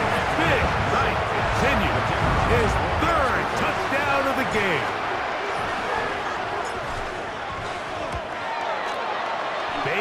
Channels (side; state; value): both; identical; correlation 1.00